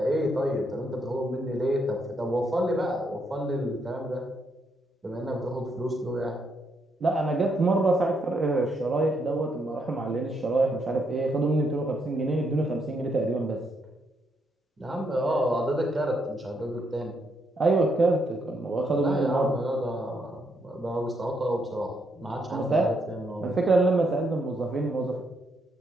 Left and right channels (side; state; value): both; normal; correlation 0.76